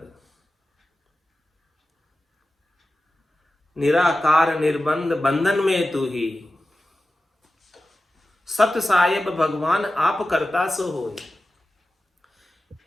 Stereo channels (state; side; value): normal; both; correlation 0.93